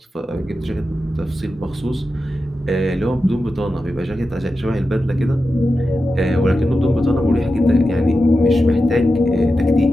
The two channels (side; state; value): both; normal; correlation 0.91